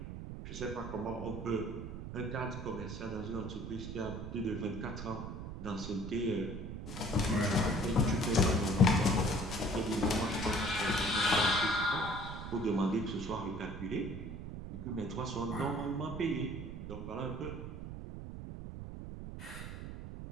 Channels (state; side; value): noise; right; rumble, 8 dB below the sound